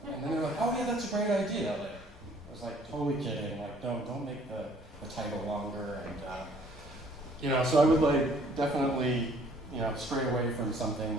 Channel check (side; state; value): both; normal; correlation 0.59